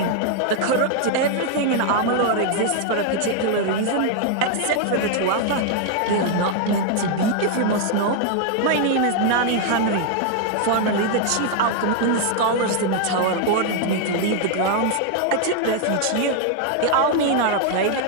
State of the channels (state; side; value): different; both; correlation 0.00